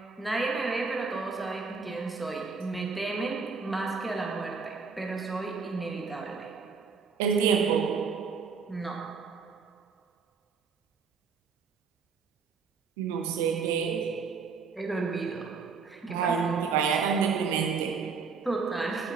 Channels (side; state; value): left; quieter; 5.2 dB